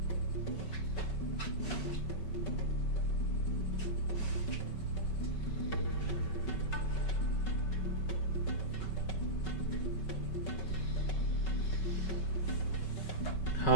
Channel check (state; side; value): late; right; 5.3 ms